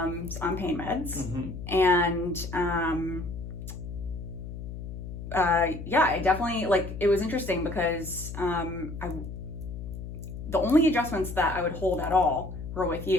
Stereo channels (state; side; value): noise; left; hum, 9 dB below the sound